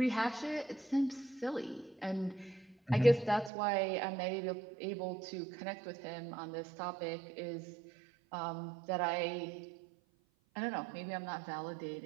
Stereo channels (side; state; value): left; drops out; at 3.5 s